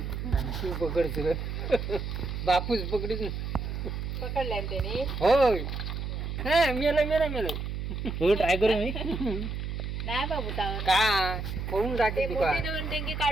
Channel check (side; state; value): right; noise; hum, 4 dB below the sound